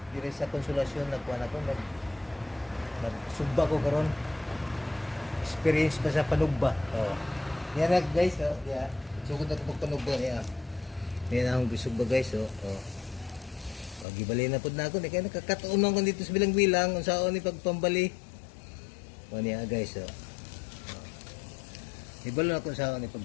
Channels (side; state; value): right; drops out; at 14.1 s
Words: dire sa Konsolasyon nagkuan ako nagsugba ko karon. Experience ba sa panugba? Oh. Yan na guys, oh. Yeah. Sugod na ko panugba niya. Yan ang bisugba guys, oh. Oh. Pag gibali na pud na ako, kaya nakakatuon man ko dito sa bilang-bilang unsaon ni pagpambali. O niya guys, oh. Ibalo na ko sa ni pag